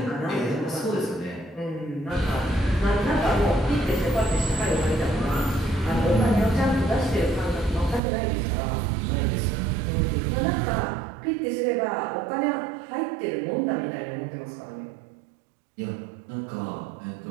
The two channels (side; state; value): left; drops out; at 8.0 s